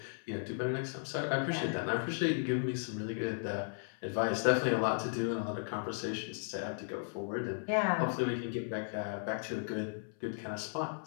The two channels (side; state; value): right; silent; 54 dB below the other